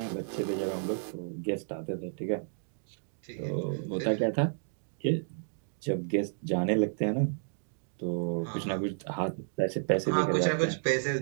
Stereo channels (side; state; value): left; silent; digital silence